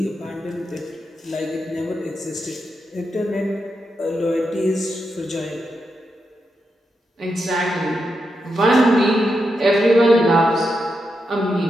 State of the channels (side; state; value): both; normal; correlation 0.85